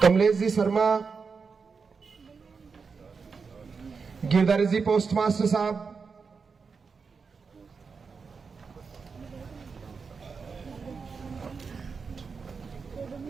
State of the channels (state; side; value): quieter; left; 5.2 dB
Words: कमलेश जी शर्मा, गिरधारी जी पोस्टमास्टर साहब,